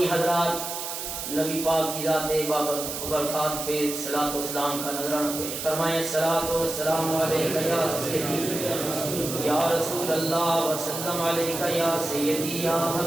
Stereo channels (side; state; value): right; noise; hiss, 6 dB below the sound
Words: حضرات نبی پاک کی ذات بابرکات پہ صلاۃ و سلام کا نذرانہ پیش فرمائیں۔ الصلاۃ والسلام علیکہ یا سیدی یا رسول اللہ وسلم علیکہ یا سیدی یا